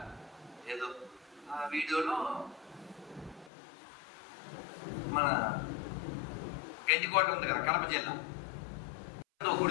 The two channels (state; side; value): drops out; right; at 3.5 s